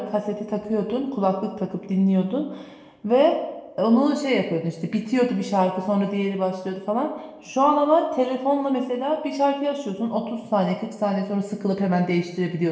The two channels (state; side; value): identical; both; correlation 1.00